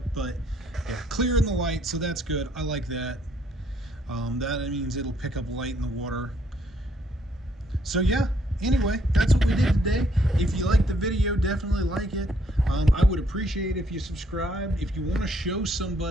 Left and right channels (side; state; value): both; normal; correlation 0.68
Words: but yeah, clear in the light, so that's good. I like that. That means it'll pick up light in the water. So yeah, anyway, that's what we did today. If you liked the video, definitely like it. I would appreciate if you subscribed. If you want to show